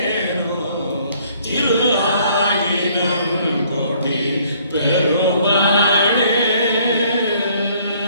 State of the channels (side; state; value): both; inverted; correlation -0.61